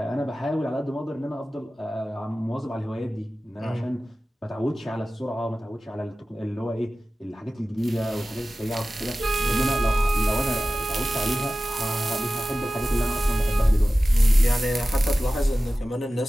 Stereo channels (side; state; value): both; normal; correlation 0.96